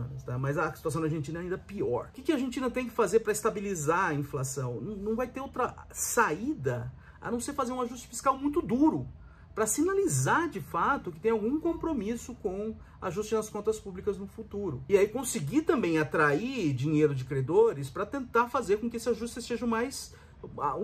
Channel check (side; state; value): both; identical; correlation 1.00